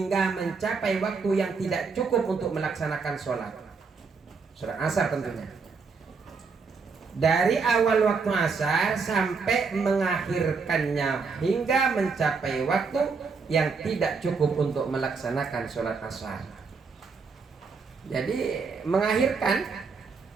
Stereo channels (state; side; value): quieter; left; 4.9 dB